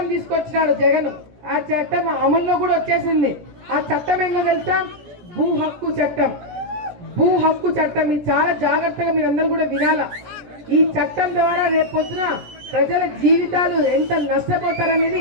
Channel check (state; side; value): late; left; 17 ms